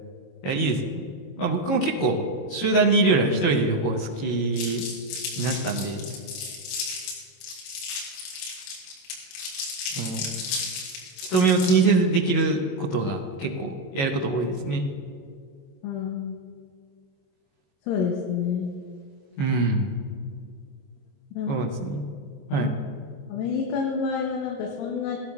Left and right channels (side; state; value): right; late; 22 ms